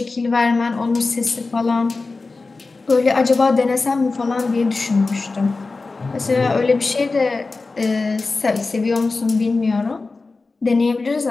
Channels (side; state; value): right; quieter; 3.8 dB